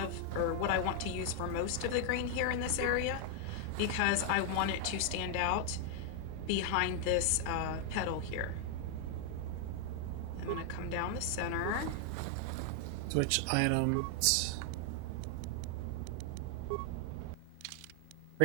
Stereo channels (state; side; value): different; both; correlation 0.00